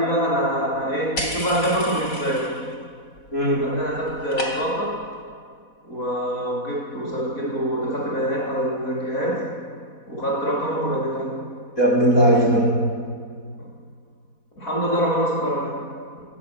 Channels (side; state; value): right; late; 4.1 ms